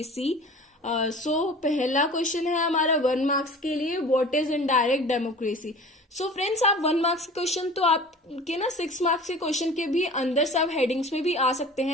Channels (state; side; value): normal; both; correlation 0.41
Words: So पहला question है हमारा 1 marks के लिए, what is indirect democracy. So friends, आप 1 marks के question तो आपके ना 6 मार्क्स के क्वेश्चन के भी अंदर सब हेडिंग्स में भी आ सकते